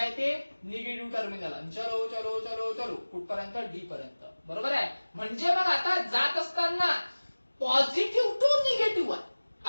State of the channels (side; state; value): both; inverted; correlation -1.00